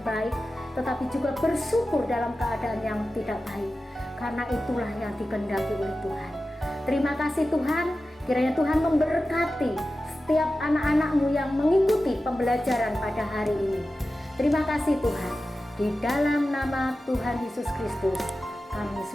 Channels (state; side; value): normal; both; correlation 0.94